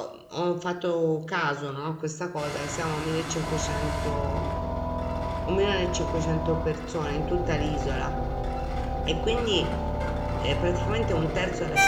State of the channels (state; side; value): identical; both; correlation 1.00